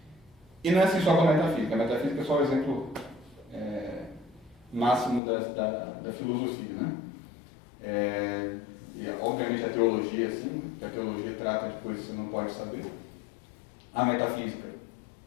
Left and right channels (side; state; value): right; drops out; at 5.2 s